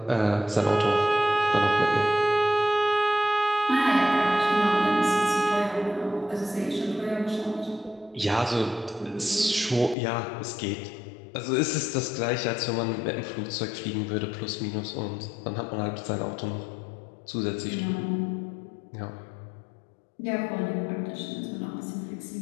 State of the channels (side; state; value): right; drops out; at 10.0 s